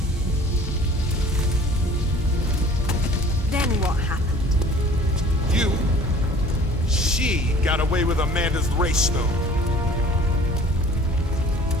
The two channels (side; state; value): both; normal; correlation 0.49